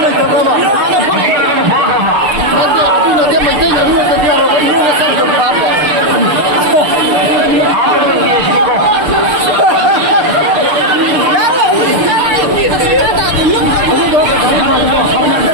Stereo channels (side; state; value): left; late; 6.8 ms